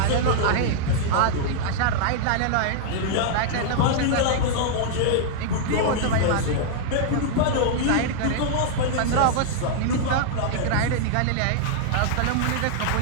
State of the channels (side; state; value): both; different; correlation -0.01